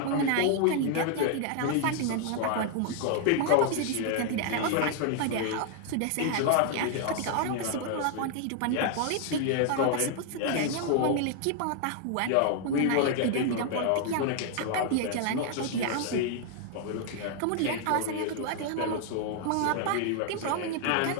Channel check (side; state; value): both; different; correlation 0.00